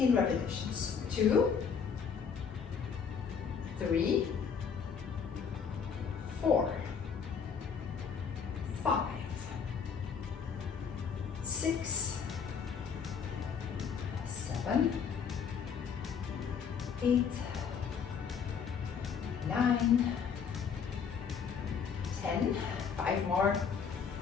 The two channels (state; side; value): quieter; right; 6.6 dB